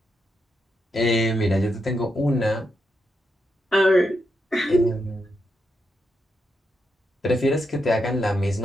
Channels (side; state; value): both; normal; correlation 0.83